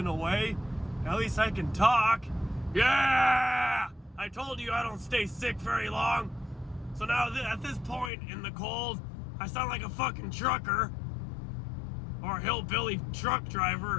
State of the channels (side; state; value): right; drops out; at 8.1 s